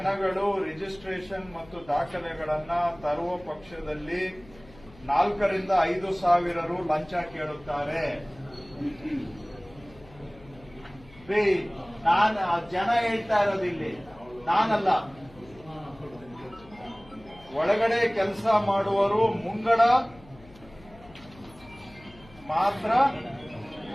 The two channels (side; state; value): left; noise; hum, 23 dB below the sound